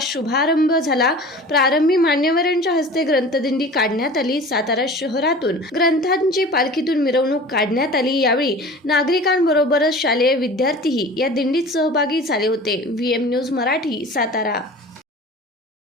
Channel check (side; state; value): both; normal; correlation 0.40